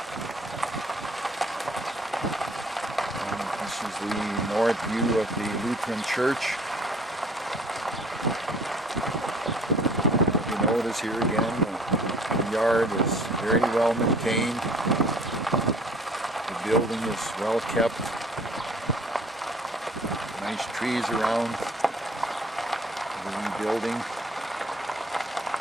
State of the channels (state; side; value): normal; both; correlation 0.53